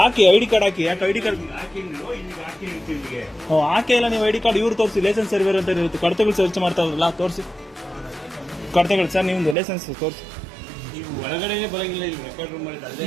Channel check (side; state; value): left; drops out; at 9.6 s